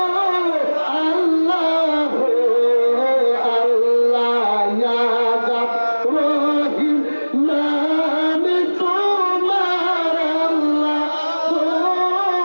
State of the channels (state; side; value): inverted; both; correlation -1.00